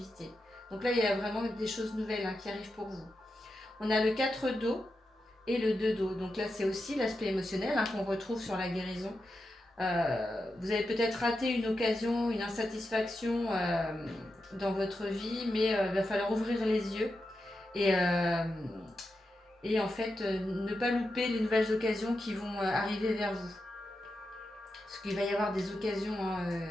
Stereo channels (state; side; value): normal; both; correlation 0.89